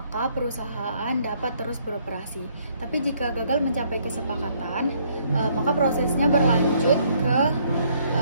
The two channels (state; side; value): inverted; both; correlation -0.67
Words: perusahaan dapat terus beroperasi. Tapi jika gagal mencapai kesepakatan, maka prosesnya berlanjut ke